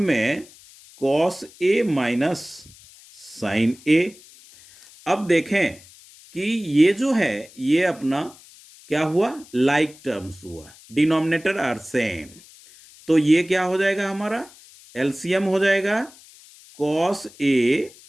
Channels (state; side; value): noise; left; hiss, 23 dB below the sound